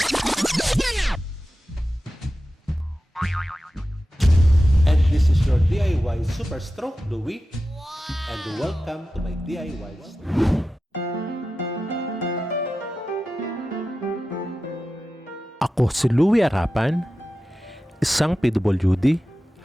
And this is your DIY Super Stroke Louie, and welcome to my DIY store. Ako si Louie Arapan, isang PWD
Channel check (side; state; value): both; normal; correlation 0.93